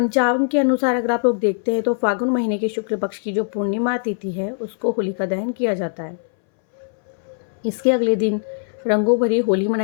के अनुसार अगर आप लोग देखते हैं तो फागुन महीने के शुक्ल पक्ष की जो पूर्णिमा तिथि है उसको होलिका दहन किया जाता है। इसके अगले दिन रंगों भरी होली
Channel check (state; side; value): silent; right; 63 dB below the other